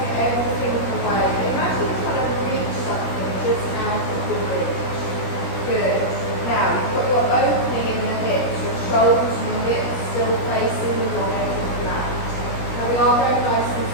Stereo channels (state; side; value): late; right; 17 ms